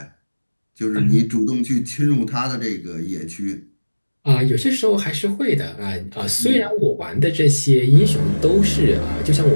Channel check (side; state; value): both; inverted; correlation -1.00